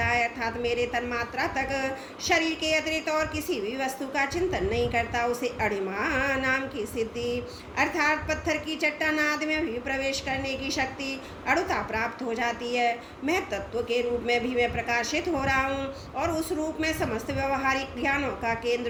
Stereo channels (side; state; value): both; identical; correlation 1.00